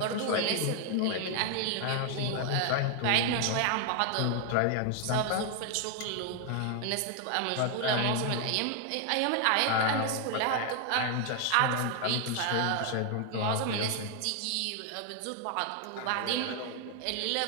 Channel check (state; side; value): different; both; correlation 0.00